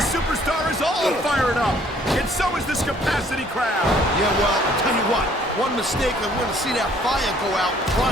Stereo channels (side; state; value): both; normal; correlation 0.60